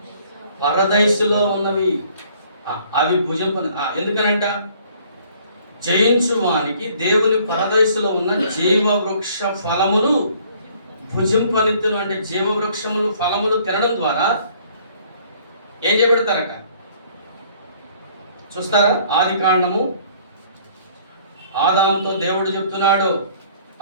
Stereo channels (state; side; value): inverted; both; correlation -0.58